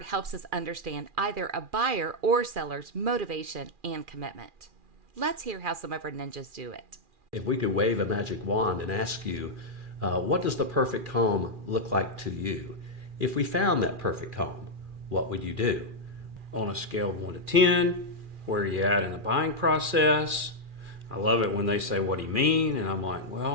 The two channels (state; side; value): late; left; 2.4 ms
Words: helps us understand either a buyer or seller's motivation and commitment. Let's hear how some of our ninjas do it. If we could wave a magic wand and ask you, what does the perfect home look like to you? If we found that perfect home, what would you do? On a scale of 1 to 10, where are you at in the buying process? I love it when they say, what do you mean? And I'm like,